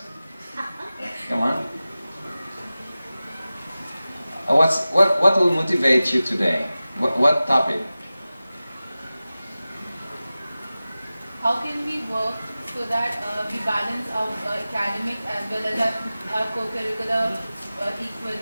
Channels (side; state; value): both; inverted; correlation -0.96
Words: Come on. What will motivate you today? What topic? How can we work so that we balance our academic as well as our co-curricular